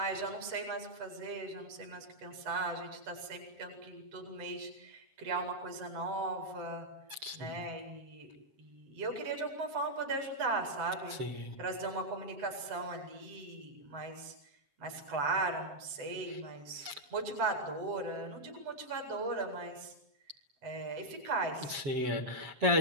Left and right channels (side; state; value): left; late; 7.4 ms